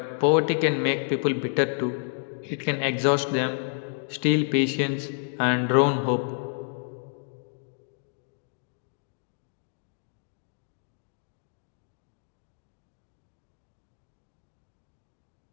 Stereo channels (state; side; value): silent; right; digital silence